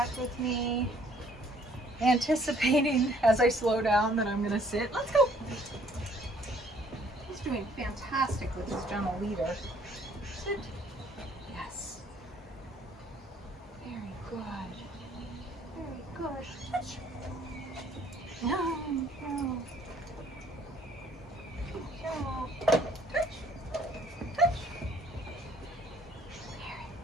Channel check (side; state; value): both; normal; correlation 0.61